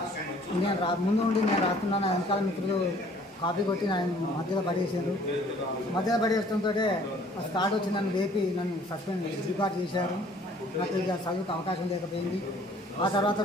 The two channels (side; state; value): both; normal; correlation 0.55